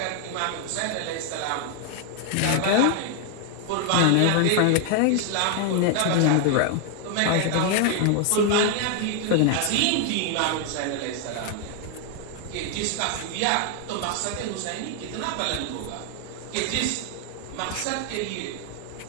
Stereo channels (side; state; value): both; different; correlation 0.00